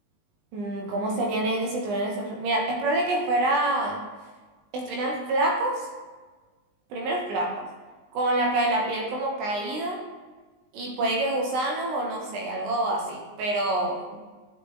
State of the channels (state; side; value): late; left; 20 ms